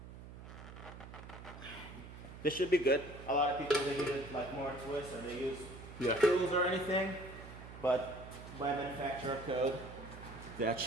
This should be good. A lot of people they use it like more twist or they use tools or anything, but by manufacturer code, that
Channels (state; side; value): noise; right; hum, 14 dB below the sound